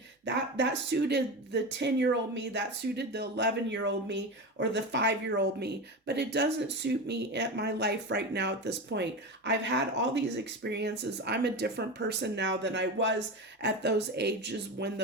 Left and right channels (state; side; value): normal; both; correlation 0.22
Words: that suited the 10-year-old me, that suited the 11-year-old me or the 5-year-old me, but it doesn't suit me at my life right now at this point. I've had all these experiences. I'm a different person now than I was at those ages when